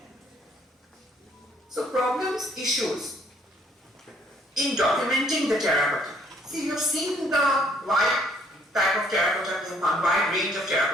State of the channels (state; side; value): normal; both; correlation 0.64